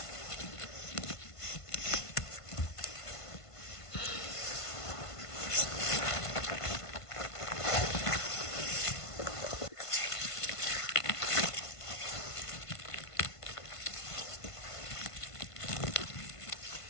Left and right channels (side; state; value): right; late; 1.5 ms